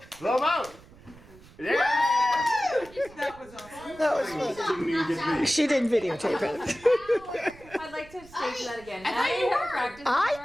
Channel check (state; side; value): noise; right; rumble, 22 dB below the sound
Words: Blow 'em out. Yeah! That was fun. Didn't even get these. She didn't videotape it. I'd like to stage that again. I thought you were. Practice. I